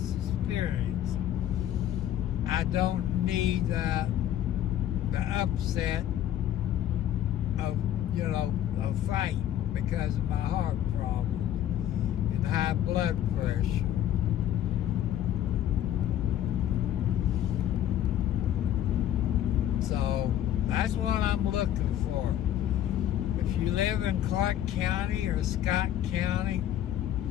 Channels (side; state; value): right; quieter; 11.5 dB